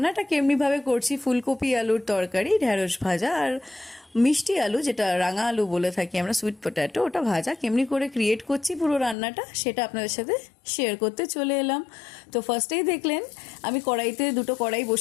কেমনিভাবে করছি। ফুলকপি আলুর তরকারি, ঢ্যাঁড়স ভাজা আর মিষ্টি আলু, যেটা রাঙা আলু বলে থাকি আমরা, সুইট পটাটো, ওটা ভাজা কেমনি করে ক্রিয়েট করছি পুরো রান্নাটা, সেটা আপনাদের সাথে শেয়ার করতে চলে এলাম। তো ফার্স্টেই দেখলেন আমি কড়াইতে দুটো কড়াই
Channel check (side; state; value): right; drops out; at 9.2 s